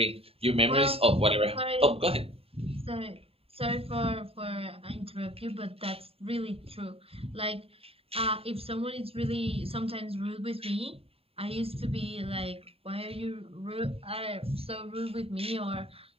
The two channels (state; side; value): late; left; 0.28 ms